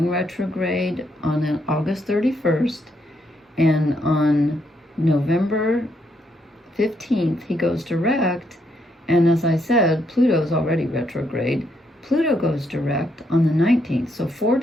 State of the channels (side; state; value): both; normal; correlation 0.76